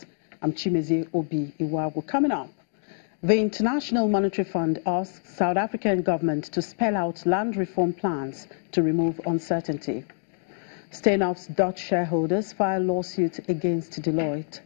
I'm Chimezi Obi Iwago. Coming up, the International Monetary Fund asks South African government to spell out land reform plans to remove uncertainty. Steenhoff's Dutch shareholders file lawsuit against Deloitte.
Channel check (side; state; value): right; silent; 61 dB below the other